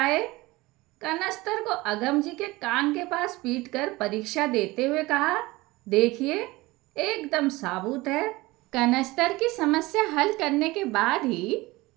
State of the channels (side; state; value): left; quieter; 20.9 dB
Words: कनस्तर को अगम जी के कान के पास पीटकर परीक्षा देते हुए कहा, देखिए एकदम साबुत है। कनस्तर की समस्या हल करने के बाद ही